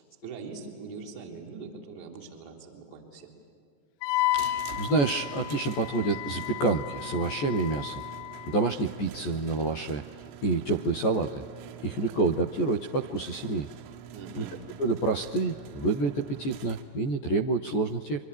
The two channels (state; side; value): late; right; 14 ms